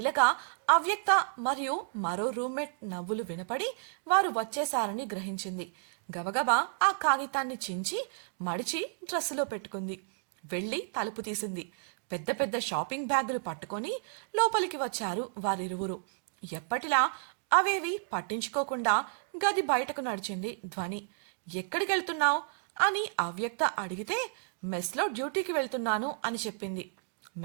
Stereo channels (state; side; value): silent; left; digital silence